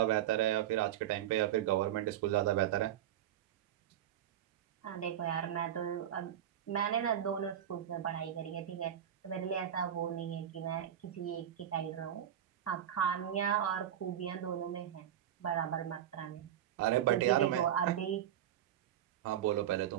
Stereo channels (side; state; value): left; quieter; 10.9 dB